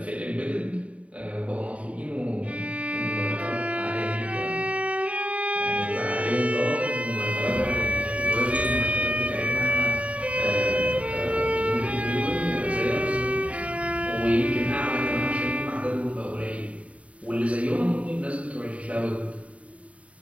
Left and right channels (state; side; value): late; left; 0.065 ms